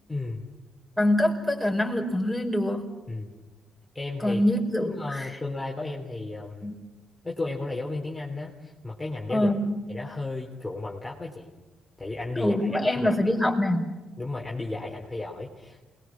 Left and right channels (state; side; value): normal; both; correlation 0.91